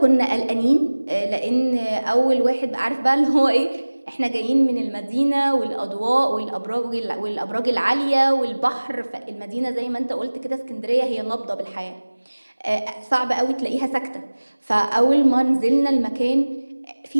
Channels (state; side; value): inverted; both; correlation -1.00